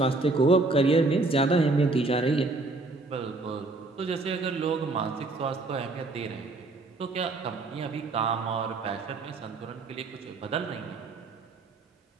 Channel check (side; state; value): left; quieter; 3.3 dB